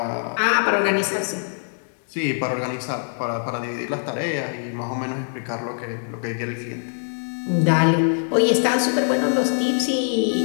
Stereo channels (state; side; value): silent; right; digital silence